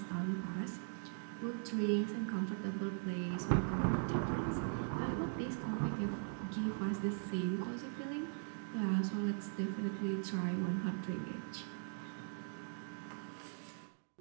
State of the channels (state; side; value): silent; left; digital silence